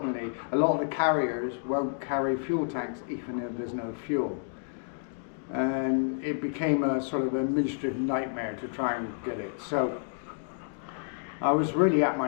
a lot of the carriers won't carry fuel tanks even if there's no fuel. And it became a sort of administrative nightmare to try and get it. So I was really at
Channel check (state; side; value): silent; right; digital silence